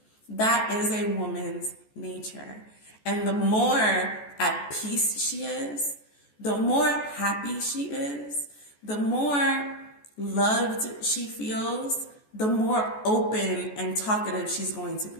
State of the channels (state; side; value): late; right; 14 ms